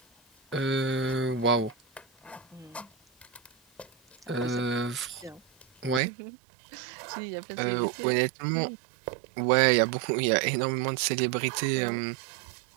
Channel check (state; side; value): drops out; left; at 6.0 s